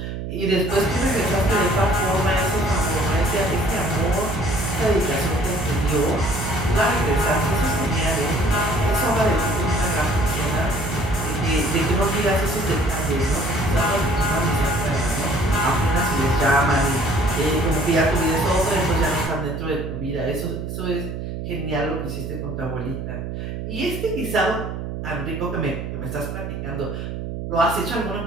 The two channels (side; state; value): right; noise; hum, 6 dB below the sound